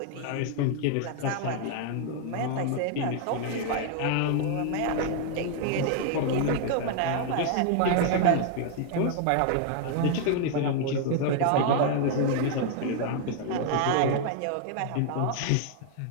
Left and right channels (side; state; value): both; different; correlation 0.00